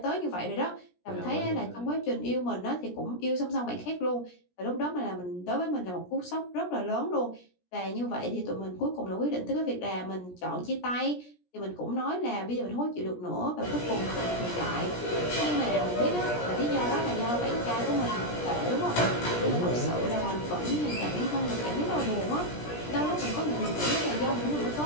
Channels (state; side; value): late; right; 17 ms